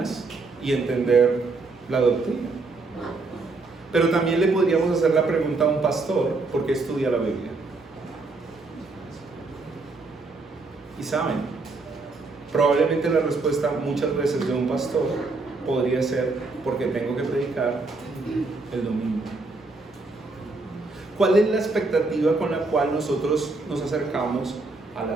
y entender la doctrina. Pero también le podríamos hacer la pregunta a un pastor: ¿por qué estudia la Biblia? Y saben, probablemente la respuesta muchas veces de un pastor podría ser: porque tengo que predicar el domingo. ¿Cuál es la expectativa con la cual nosotros nos acercamos a la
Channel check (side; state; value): left; quieter; 3.6 dB